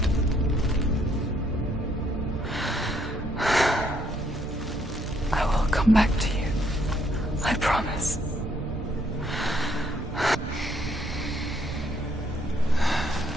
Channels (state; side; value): noise; right; rumble, 8 dB below the sound